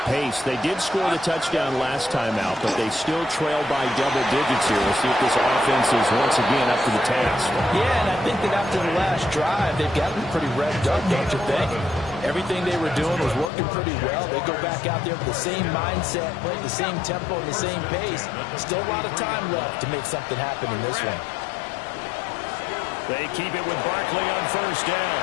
pace. They did score the touchdown last time out, but they still trail by double digits here. We'll see if this offense is once again up to the task. Yeah, and I think that after the last drive, they've gotten pretty revved up, don't you think? Everything they were doing was working pretty well. They go back out there with the same mindset, play the same tempo, and the same pace. Still a lot of time left to make something happen in this one. They keep it with Barkley on first down.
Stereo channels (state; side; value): drops out; right; at 13.5 s